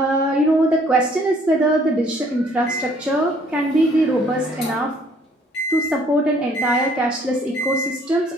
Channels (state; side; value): normal; both; correlation 0.60